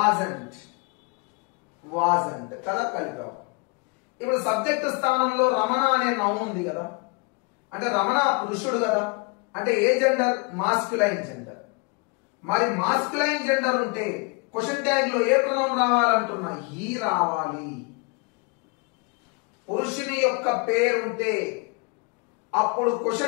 కదా, కలిపావు. ఇప్పుడు సబ్జెక్ట్ స్థానంలో రమణ అనే నౌన్ ఉంది కదా. అంటే రమణ పురుషుడు కదా. అంటే ఏ జెండర్? Masculine gender. మరి మాస్క్యులైన్ జెండర్ ఉంటే క్వశ్చన్ ట్యాగ్ లో ఏ ప్రొనౌన్ రావాలంటున్నా? హీ రావాలి. పురుషుని యొక్క పేరుంటే అప్పుడు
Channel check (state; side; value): quieter; right; 30.8 dB